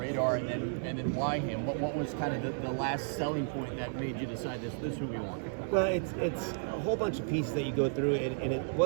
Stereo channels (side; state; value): left; silent; digital silence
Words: and then why him? What was kind of the last selling point that made you decide this is who we want? Well, it's a whole bunch of pieces that you go through, and it